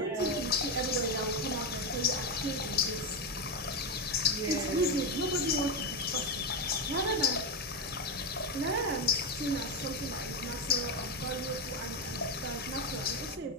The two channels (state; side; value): normal; both; correlation 0.09